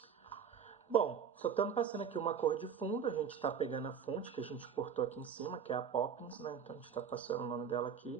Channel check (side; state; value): left; quieter; 7.3 dB